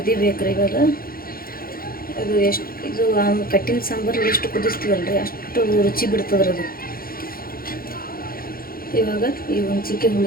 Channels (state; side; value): late; right; 0.42 ms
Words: ಇವಾಗ ಅದು ಇದು ಕಟ್ಟಿನ ಸಾಂಬಾರು ಎಷ್ಟು ಕುದಿಸ್ತೀವಲ್ರಿ ಅಷ್ಟು ರುಚಿ ಬಿಡ್ತದ್ರಿ ಅದು. ಇವಾಗ ಈ ಹುಂಚಿಕಾಯಿ